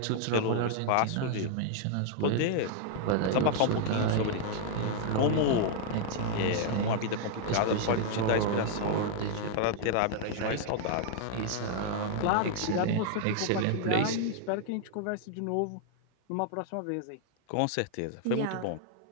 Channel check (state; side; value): different; both; correlation 0.00